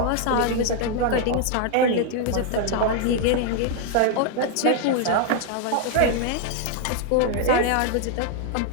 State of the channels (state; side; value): different; both; correlation 0.00